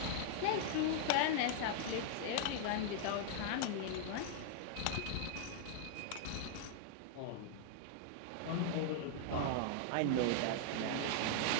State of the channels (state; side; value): different; both; correlation -0.01